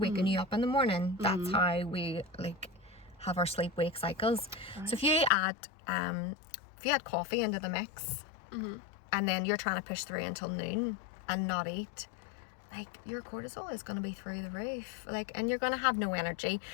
you up in the morning. That's how we, like, have our sleep-wake cycles. So if you add coffee into the mix, and then you're trying to push through until noon and not eat, like, your cortisol is going to be through the roof, like, and you're going to have no energy.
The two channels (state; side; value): drops out; right; at 5.3 s